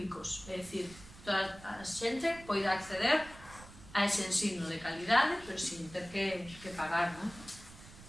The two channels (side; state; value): right; noise; rumble, 18 dB below the sound